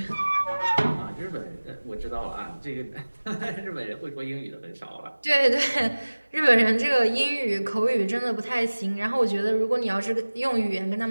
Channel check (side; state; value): both; inverted; correlation -1.00